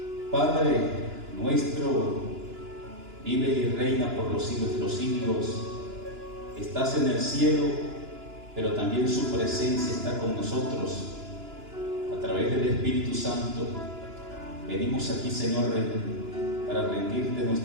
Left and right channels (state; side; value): late; left; 2.9 ms